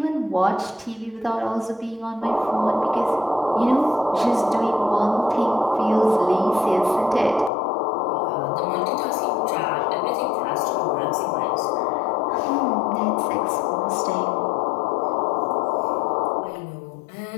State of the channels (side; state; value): right; drops out; at 7.5 s